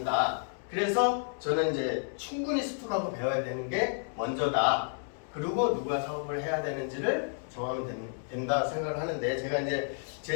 그래서 저는 이제 충분히 습득하고 배워야 되는 게 먼저다. 그리고 누가 사업을 해야 되는지를 정하면 된다 생각을 하는데, 제가 이제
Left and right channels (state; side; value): silent; right; 57 dB below the other